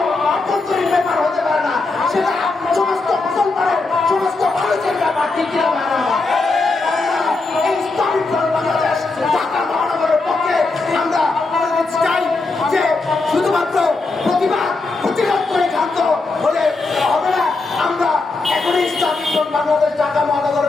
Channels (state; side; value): quieter; right; 3.6 dB